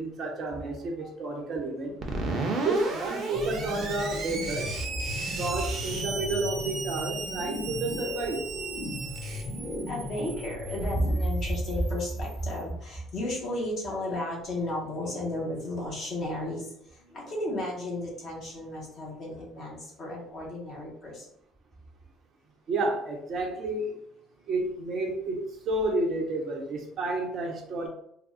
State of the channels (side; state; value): both; normal; correlation 0.59